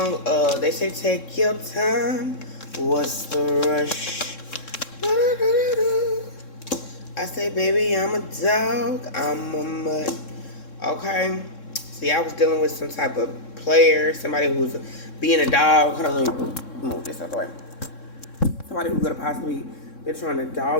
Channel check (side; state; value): right; late; 3.7 ms